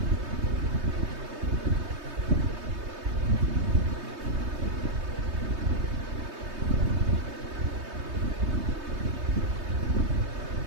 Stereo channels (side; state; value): left; late; 3.2 ms